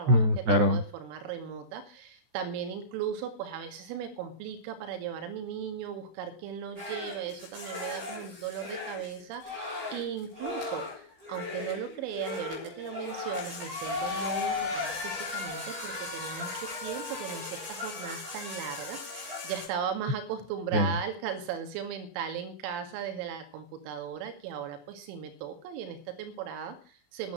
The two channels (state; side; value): late; left; 14 ms